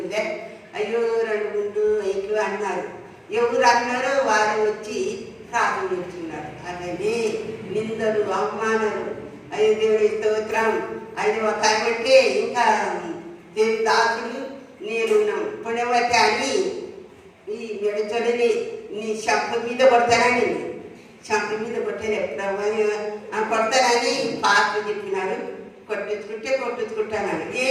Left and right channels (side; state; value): both; identical; correlation 1.00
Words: అయ్యో 2 3 5 అన్నారు. ఎవరు అన్నారో వారు వచ్చి ప్రార్థన ఇస్తున్నారు. అలాగే నిందలు, అవమానాలు. అయ్యో దేవుని స్తోత్రం. అది ఒక అంటే ఇంకా దేవుని దాసుడు నేనున్నాం పుణ్యవతి అని ఈ మెడచొడని నీ శంఖ మీద కొడతానని, శంఖ మీద కొట్టాను ఎప్పుడు కొడతానని పాత్ర చెప్పినాడు. కొట్టించుకుంటానని